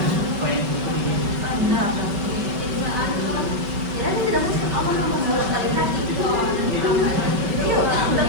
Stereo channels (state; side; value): late; left; 5.2 ms